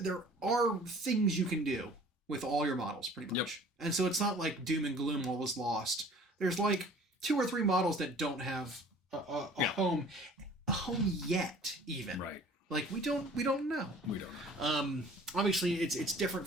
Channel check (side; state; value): both; normal; correlation 0.49